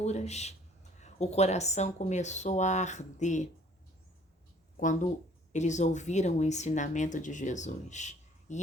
O coração começou a arder quando eles ouviram o ensinamento de Jesus.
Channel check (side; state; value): both; normal; correlation 0.56